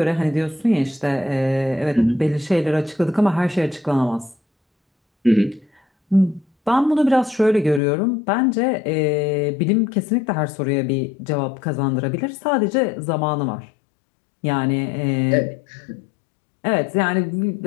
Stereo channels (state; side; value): drops out; right; at 7.8 s